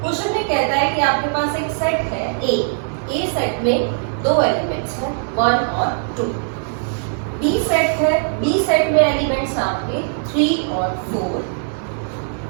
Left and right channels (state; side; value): silent; left; digital silence